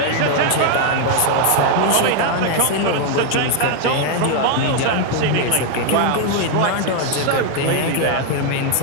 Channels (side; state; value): both; different; correlation 0.00